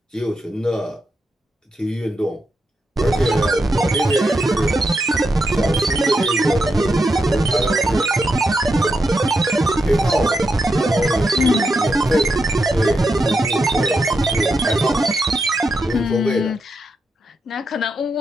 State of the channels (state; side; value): normal; both; correlation 0.84